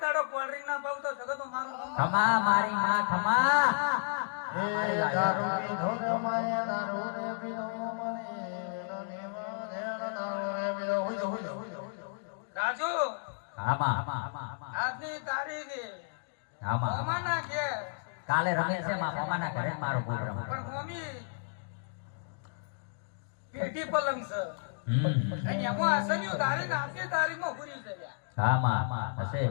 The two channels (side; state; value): right; silent; digital silence